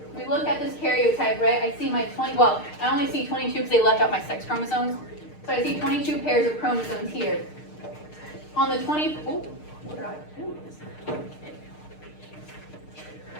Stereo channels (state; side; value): late; right; 6.6 ms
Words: we look at this karyotype, right? I see my 20, well, I only see 22 because they left out my sex chromosomes. So I see 22 pairs of chromosomes here. On the 20, oh, what did I do?